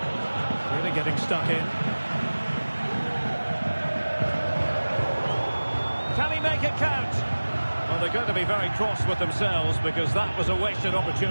Really getting stuck in. Can he make it count? Well, they're going to be very cross with themselves because that was a wasted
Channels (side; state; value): both; inverted; correlation -1.00